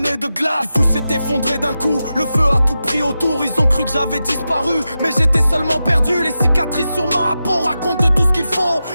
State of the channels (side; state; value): both; inverted; correlation -0.91